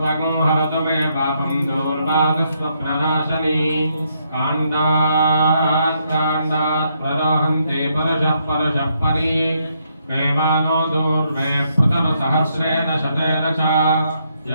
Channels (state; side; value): inverted; both; correlation -0.76